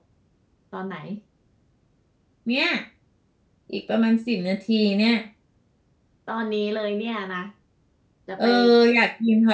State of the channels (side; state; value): both; identical; correlation 1.00